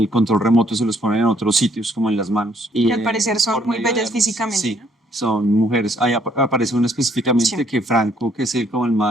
control remoto, se los ponen en otros sitios, como en las manos. Y Que al parecer son por muy medio de bellas armas. físicamente, Sí, ¿no? son mujeres. Ahí aparece una específicamente Sí. que Franco, que es como el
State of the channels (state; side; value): normal; both; correlation 0.66